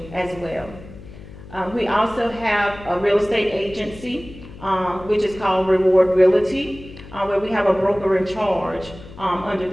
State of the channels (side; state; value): left; noise; hum, 17 dB below the sound